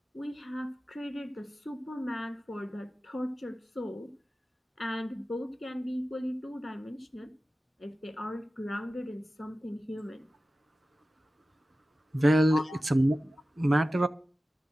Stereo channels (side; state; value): both; normal; correlation 0.95